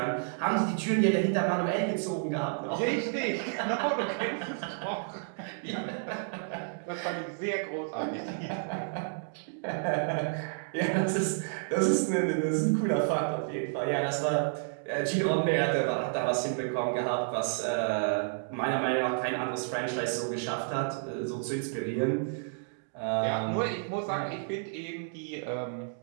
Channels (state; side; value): silent; left; digital silence